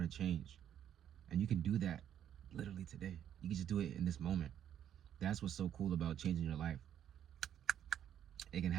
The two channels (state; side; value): quieter; left; 10.1 dB